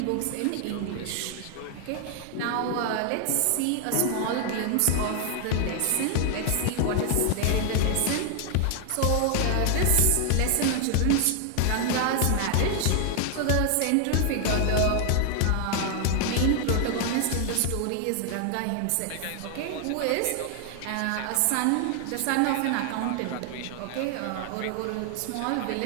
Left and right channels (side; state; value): both; different; correlation 0.00